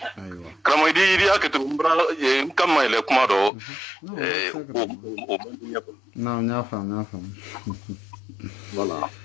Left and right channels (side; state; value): right; drops out; at 3.5 s